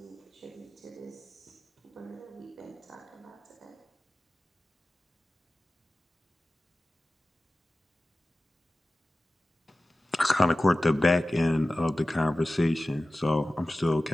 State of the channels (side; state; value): both; normal; correlation 0.96